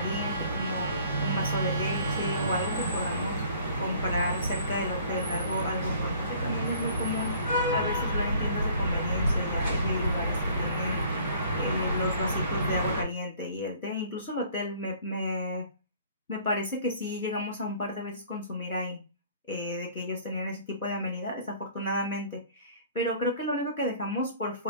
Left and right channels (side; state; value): both; inverted; correlation -0.53